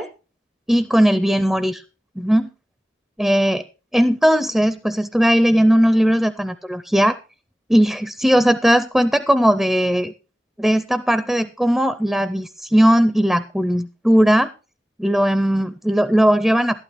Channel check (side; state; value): both; normal; correlation 0.97